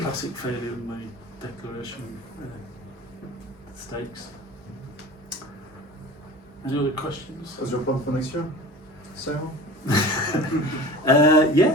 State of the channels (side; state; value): both; normal; correlation 0.38